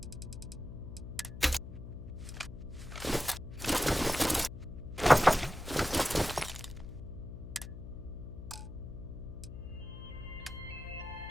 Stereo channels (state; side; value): noise; left; hum, 11 dB below the sound